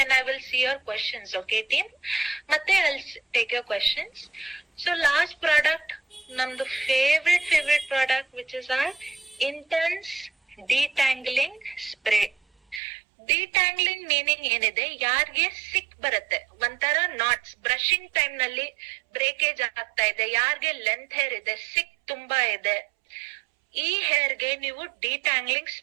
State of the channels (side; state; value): left; drops out; at 12.8 s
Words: I will see your questions. Okay team, ಮತ್ತೆ I will take your questions. So last product ನಮ್ದು favourite product, which is our intense ಡಿಟ್ಯಾಂಗ್ಲಿಂಗ್ spray. ಡಿಟ್ಯಾಂಗ್ಲಿಂಗ್ meaning ಏನಿದೆ, ಯಾರಿಗೆ ಸಿಕ್ ಬರುತ್ತೆ, ಒಂಥರ knots, brushing time ನಲ್ಲಿ breakage ಆಗ್ತಾ ಇದೆ, ಯಾರಿಗೆ ಲೆಂತ್ ಹೇರ್ ಇದೆ, ಸಿಕ್ ತುಂಬಾ ಇದೆ, ಈ ಹೇರ್ ಗೆ ನೀವು ಡಿಟ್ಯಾಂಗ್ಲಿಂಗ್